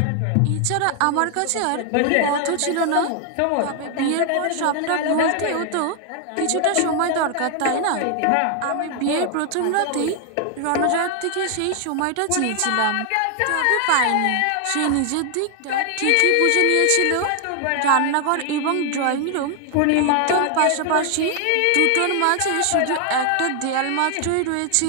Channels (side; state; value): both; different; correlation 0.00